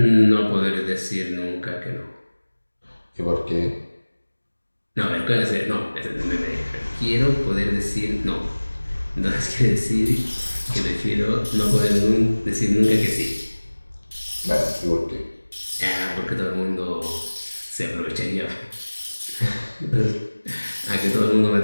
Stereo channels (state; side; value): inverted; both; correlation -1.00